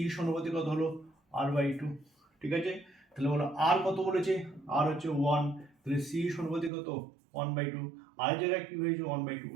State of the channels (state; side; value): drops out; left; at 6.7 s